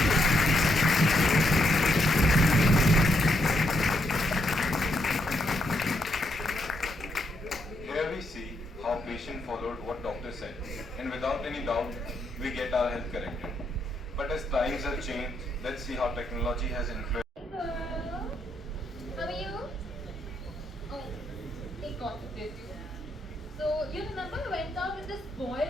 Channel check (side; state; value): both; normal; correlation 0.77